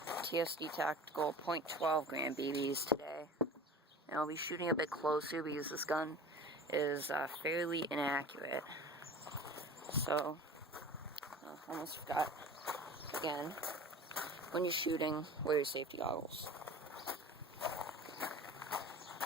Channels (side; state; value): both; normal; correlation 0.38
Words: TSD Tactical .12 gram BBs today. And I'll be shooting a bit closer because this gun is fairly inaccurate. So, almost forgot. Again, when you're shooting, wear your safety goggles.